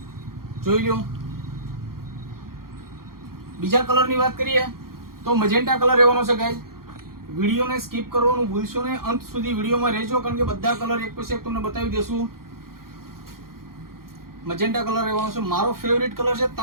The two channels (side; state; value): left; late; 0.92 ms